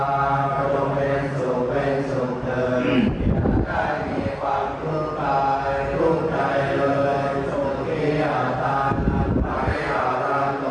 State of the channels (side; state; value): both; identical; correlation 1.00